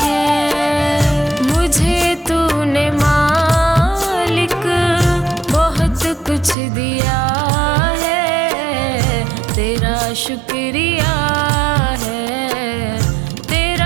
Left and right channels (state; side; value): drops out; left; at 6.6 s